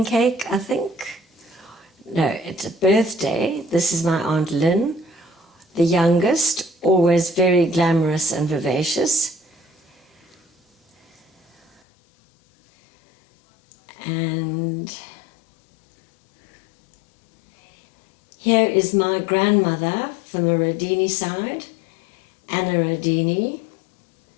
cake, I think. No, it's a birthday. This is my Aunt Lynn, the youngest, always very glamorous and vivacious. And here is my grandmother from the Rodini side, Anna Rodini,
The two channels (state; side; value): drops out; right; at 11.8 s